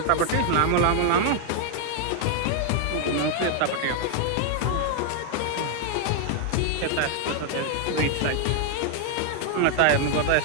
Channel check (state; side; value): different; both; correlation 0.00